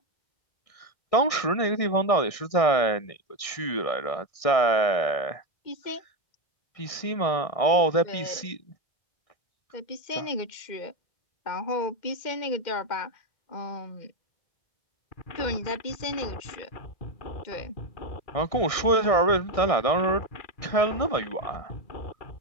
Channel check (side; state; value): right; late; 1.6 ms